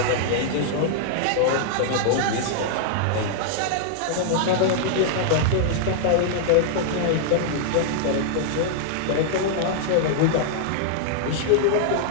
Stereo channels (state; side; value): different; both; correlation -0.01